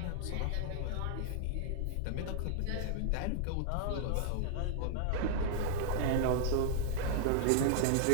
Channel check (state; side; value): different; both; correlation -0.01